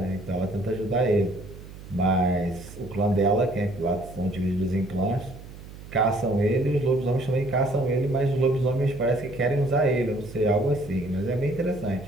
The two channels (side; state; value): right; noise; hum, 16 dB below the sound